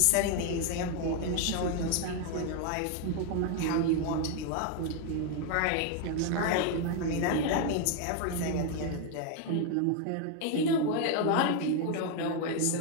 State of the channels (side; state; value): both; different; correlation 0.01